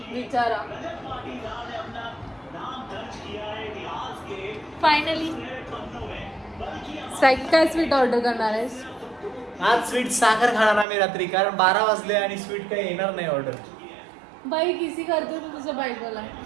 विचारा. फायनली स्वॅगी काय स्वीट ऑर्डर करणार आहेस? आज स्वीट साखर खाणार आम्ही रात्री, कारण 12 वाजले आणि स्वीट काही येणार नाही ऑर्डर. बाई किसी करतो तू तुझ्या बायकोला.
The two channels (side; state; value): left; drops out; at 10.9 s